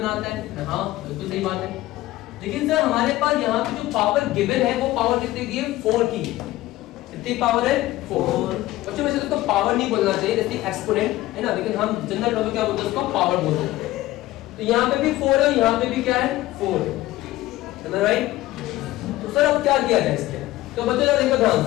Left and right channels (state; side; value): quieter; right; 16.6 dB